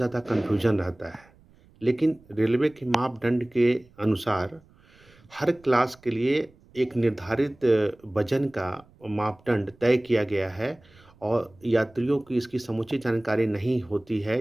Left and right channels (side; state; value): right; noise; rumble, 28 dB below the sound